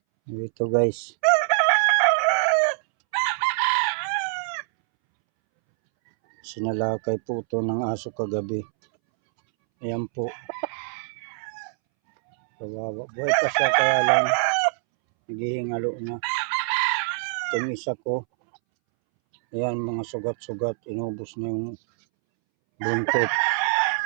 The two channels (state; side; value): silent; left; 62 dB below the other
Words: guys. Sinalakay po ito ng aso kagabi. Ayan po. Kawawa. Buhay pa siya kaya lang naghihingalo na. Itong isa ko. Ayan mga sugat-sugat. Inubos na yung buntot.